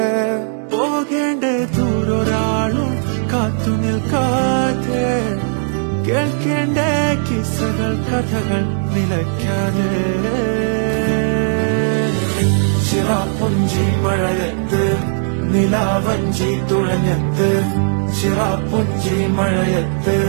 പോകേണ്ട ദൂരൊരാളും കാത്തു നിൽക്കാതെ കേൾക്കേണ്ട കിസ്സകൾ കഥകൾ നിലയ്ക്കാതെ ചിറാപ്പുഞ്ചി മഴയത്ത് നിലാവഞ്ചി തുഴഞ്ഞത്ത് ചിറാപ്പുഞ്ചി മഴയത്ത്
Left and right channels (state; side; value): silent; left; 67 dB below the other